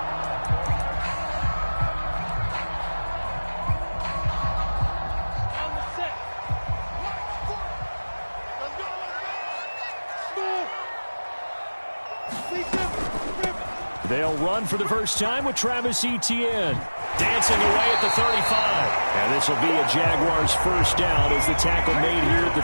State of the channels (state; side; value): inverted; both; correlation -1.00